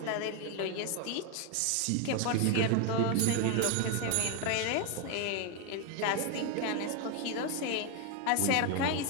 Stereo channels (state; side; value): different; both; correlation 0.01